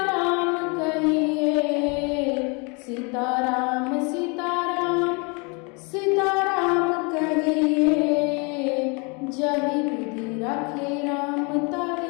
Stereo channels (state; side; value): quieter; right; 31.5 dB